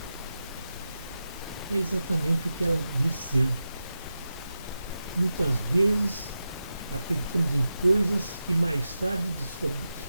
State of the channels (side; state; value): both; inverted; correlation -0.91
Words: É exatamente o que ela diz ser. Muitas vezes acreditamos em coisas que mais tarde